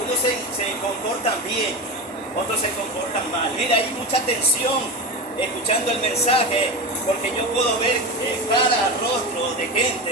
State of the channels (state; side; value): normal; both; correlation 0.23